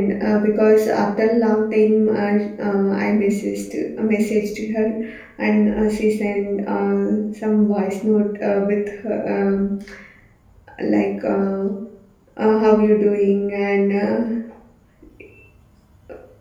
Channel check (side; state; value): both; identical; correlation 1.00